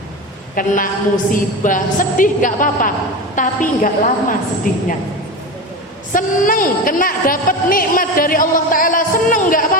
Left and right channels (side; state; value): both; normal; correlation 0.24